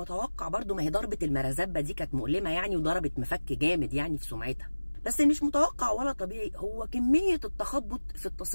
برضو، ما هي ضربه المرزبه دي كانت مؤلمه يعني، وضربت مفك جامد يعني في سمعتها. بس مش متوقع ولا طبيعي هو كميه التخبط في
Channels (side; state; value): both; inverted; correlation -1.00